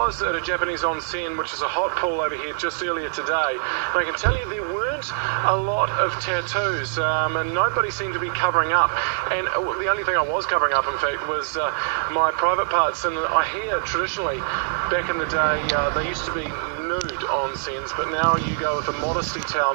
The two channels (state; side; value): silent; left; 63 dB below the other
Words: at a Japanese onsen, which is a hot pool over here, just earlier today. And I can tell you there weren't a lot of tattoos, and nobody seemed to be covering up. And the only thing I was covering up, in fact, was my private parts. And I hear traditionally, back in the day, they used to be nude onsens, but now you go with a modesty towel.